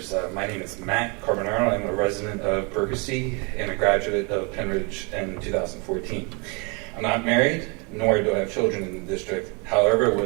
My name is Matt Carbonaro. I'm a resident of Berkesee and a graduate of Penridge in 2014. I'm not married, nor do I have children in the district. However,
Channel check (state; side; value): quieter; left; 31.7 dB